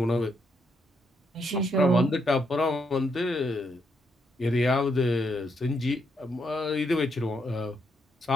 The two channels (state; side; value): normal; both; correlation 0.77